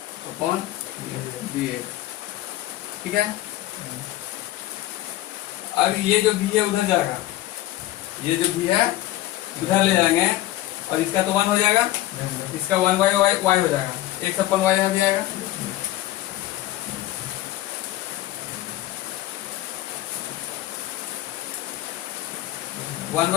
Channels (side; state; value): right; quieter; 15.3 dB